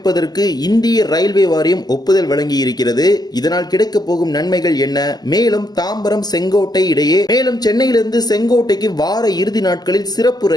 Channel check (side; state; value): right; late; 0.20 ms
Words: இந்திய ரயில்வே வாரியம் ஒப்புதல் வழங்கி இருக்கிறது. இதனால் கிடைக்க போகும் நன்மைகள் என்ன? மேலும் தாம்பரம் செங்கோட்டை இடையே மேலும் சென்னையிலிருந்து செங்கோட்டைக்கு வார இறுதி நாட்களில் சிறப்பு